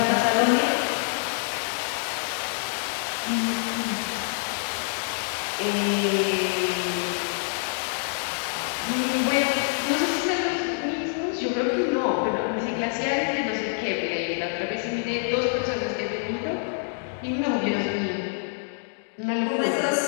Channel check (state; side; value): silent; right; digital silence